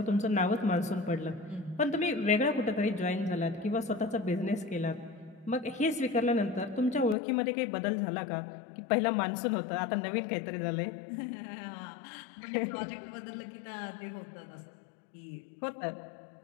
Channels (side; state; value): right; drops out; at 7.2 s